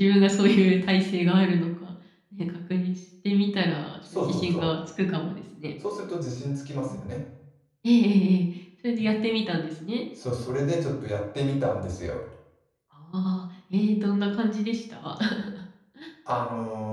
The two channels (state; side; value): identical; both; correlation 1.00